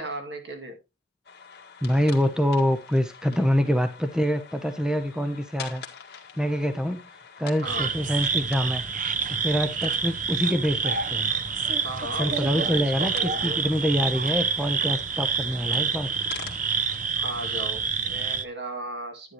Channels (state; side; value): normal; both; correlation 0.58